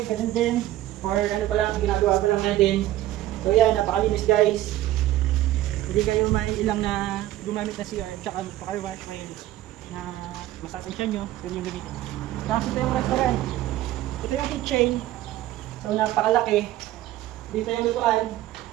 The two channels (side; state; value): left; quieter; 14.6 dB